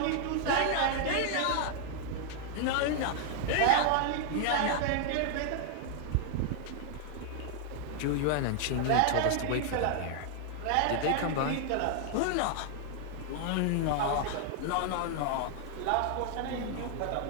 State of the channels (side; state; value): both; different; correlation 0.00